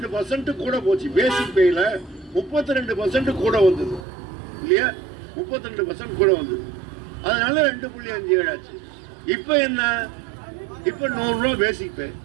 கூட போச்சு. பேசிக் பேல 32% கூட வந்தது இல்லையா? 32% கூட வந்தது. அதனால 2.57 ஆச்சு. இப்ப என்ன? இப்ப 100 ரூபா பேசிக் பே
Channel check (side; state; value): left; drops out; at 4.0 s